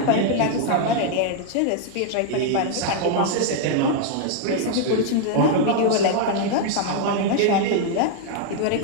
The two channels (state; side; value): different; both; correlation 0.00